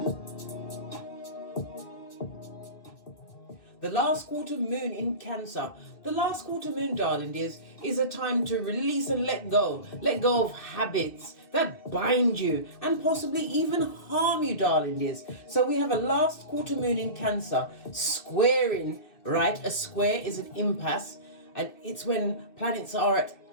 The last quarter moon in Cancer. The last quarter moon, darling dears, is a time to release and let go. Let go of habits that bind you and possibly even harm you, darling dears. So we have a last quarter moon in Cancer squaring, right? A square is an impasse, and it's when planets are at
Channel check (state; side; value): late; right; 2.5 ms